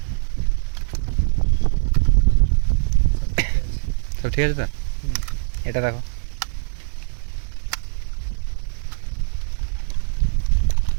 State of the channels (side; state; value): left; silent; 64 dB below the other